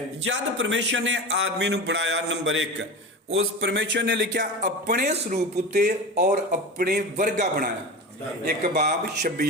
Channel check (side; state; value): both; normal; correlation 0.28